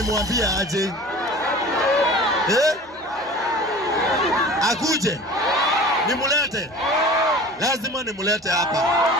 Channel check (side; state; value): both; normal; correlation 0.40